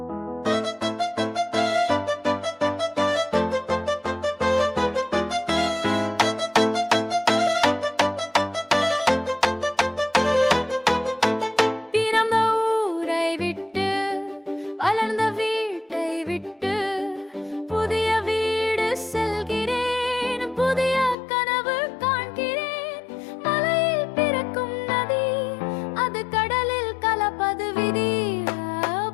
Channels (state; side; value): drops out; right; at 21.2 s